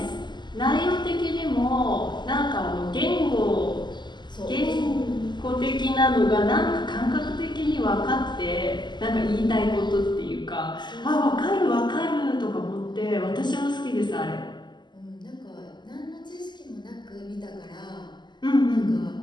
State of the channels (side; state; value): right; late; 0.21 ms